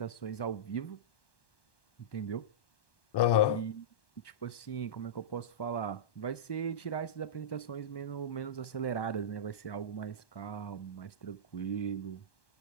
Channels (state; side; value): late; right; 1.1 ms